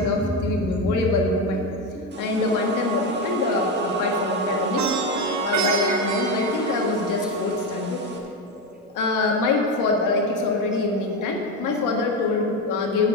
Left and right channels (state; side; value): normal; both; correlation 0.14